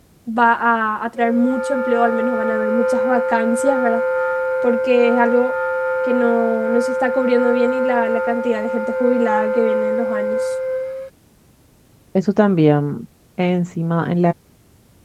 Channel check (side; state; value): both; identical; correlation 1.00